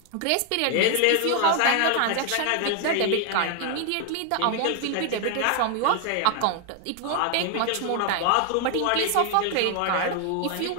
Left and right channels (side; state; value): both; different; correlation 0.00